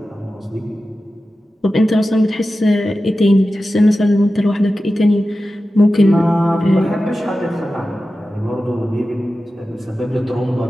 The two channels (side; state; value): both; normal; correlation 0.93